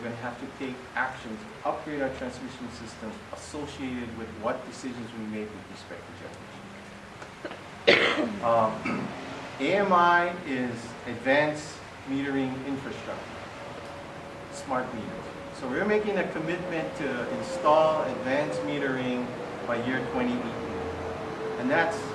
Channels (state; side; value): identical; both; correlation 1.00